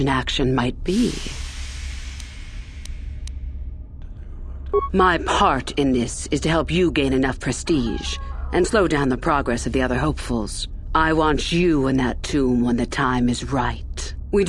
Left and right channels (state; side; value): identical; both; correlation 1.00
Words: action might be. My part in this is to help you gain enough prestige and slow down the progress of the other hopefuls. I want you in that tomb when the time is right. We